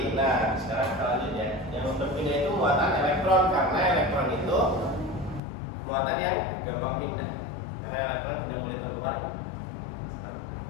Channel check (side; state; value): right; drops out; at 5.4 s